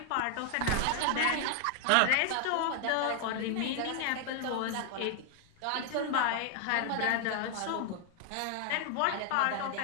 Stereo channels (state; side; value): different; both; correlation 0.00